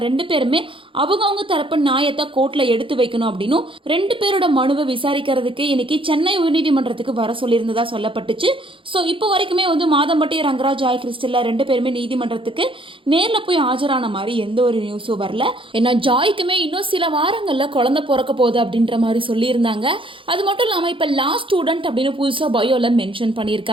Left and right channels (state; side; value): late; left; 0.25 ms